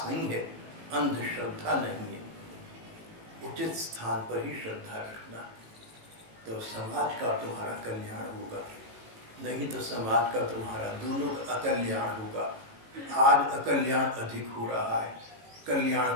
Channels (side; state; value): left; late; 18 ms